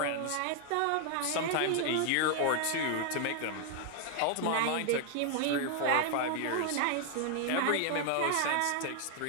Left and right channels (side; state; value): both; different; correlation 0.00